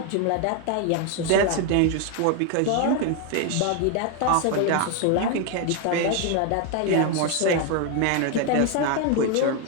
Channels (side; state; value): both; different; correlation 0.01